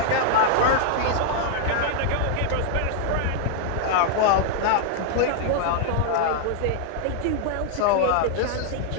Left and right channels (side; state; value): both; different; correlation -0.01